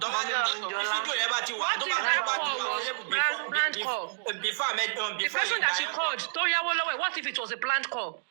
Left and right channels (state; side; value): silent; left; digital silence